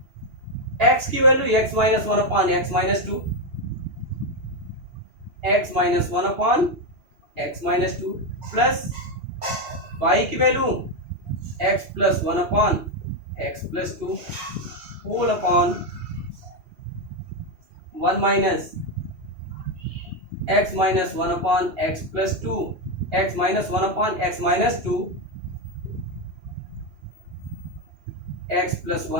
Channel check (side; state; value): left; late; 2.8 ms